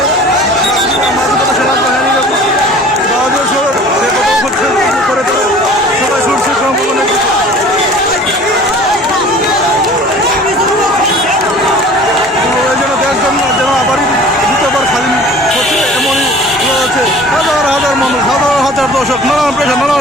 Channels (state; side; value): normal; both; correlation 0.46